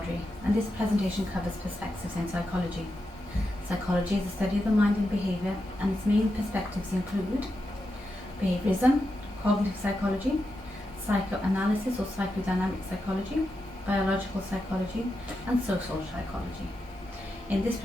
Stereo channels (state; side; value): normal; both; correlation 0.87